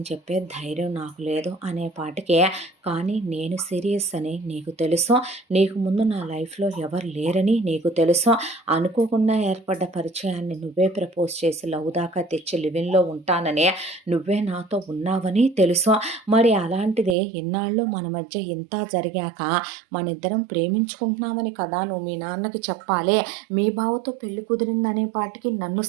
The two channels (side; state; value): left; drops out; at 17.2 s